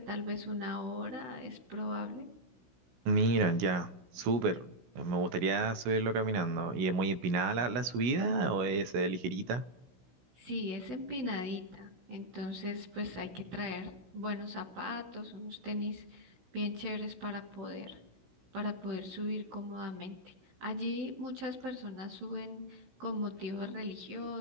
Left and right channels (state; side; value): late; left; 16 ms